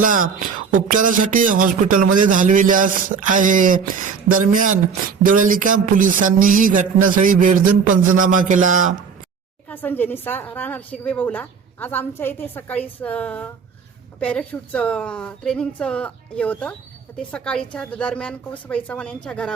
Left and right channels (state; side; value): quieter; left; 6.0 dB